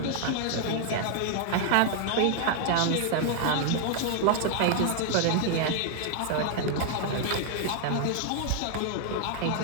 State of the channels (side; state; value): both; different; correlation 0.00